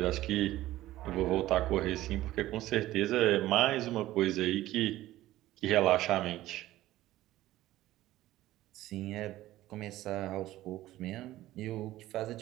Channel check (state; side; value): quieter; left; 15.5 dB